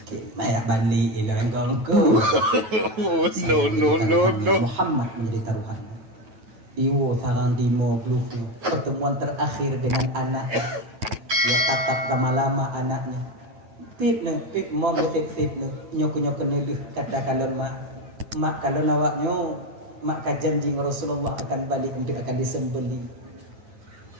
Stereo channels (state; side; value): late; left; 9.2 ms